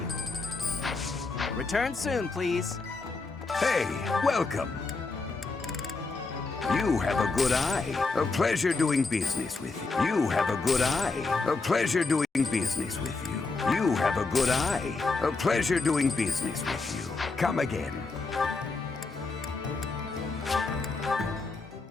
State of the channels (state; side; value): quieter; right; 3.9 dB